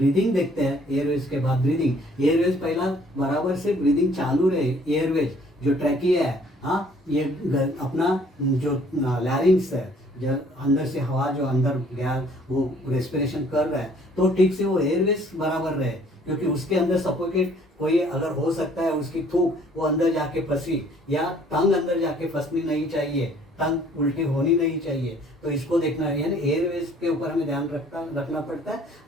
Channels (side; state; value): both; normal; correlation 0.58